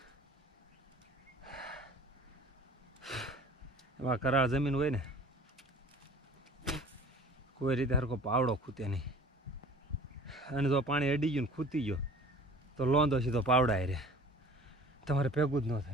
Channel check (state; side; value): normal; both; correlation 0.45